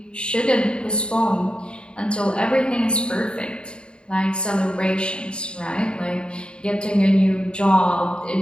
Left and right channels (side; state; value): right; late; 0.053 ms